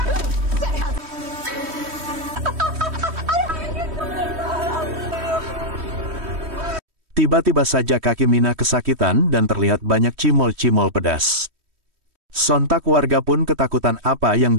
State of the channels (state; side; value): late; left; 3.1 ms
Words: Tiba-tiba saja kaki Minah kesakitan dan terlihat banyak cimol-cimol pedas. Sontak warga pun ketakutan apa